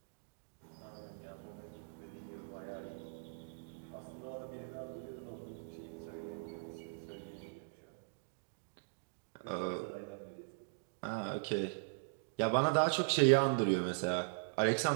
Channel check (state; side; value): silent; left; digital silence